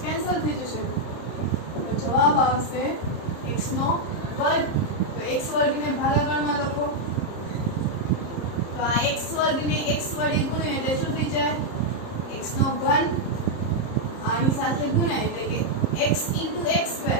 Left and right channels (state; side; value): late; right; 30 ms